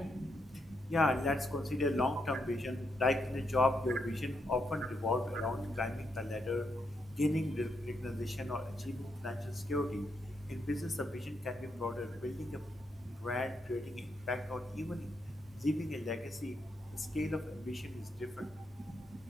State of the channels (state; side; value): normal; both; correlation 0.79